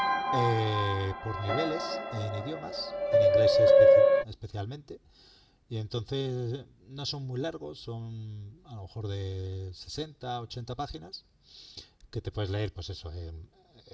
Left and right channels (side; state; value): both; identical; correlation 1.00